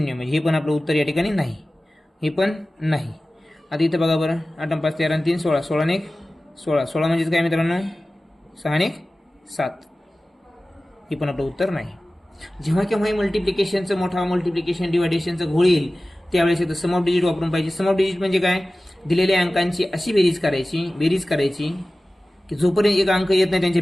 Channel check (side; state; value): both; normal; correlation 0.96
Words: म्हणजे हे पण आपलं उत्तर या ठिकाणी नाही, हे पण नाही. आता इथं बघा बरं 8 आणि 5 13 आणि 3 16. 16 आणि 1 16. 16 म्हणजेच काय मित्रांनो 6 आणि 1 7. हे पण आपलं उत्तर नाही. जेव्हा केव्हाही मल्टिप्लिकेशनचं मोठा मल्टिप्लिकेशन डिवायडेशनचं घोळ येईल त्यावेळेस इथं सम ऑफ डिजिट वापरून पाहिजे. सम ऑफ डिजिट म्हणजे काय, दिलेल्या अंकांची अशी बेरीज करायची की जोपर्यंत एक अंक येत नाही त्यांच्या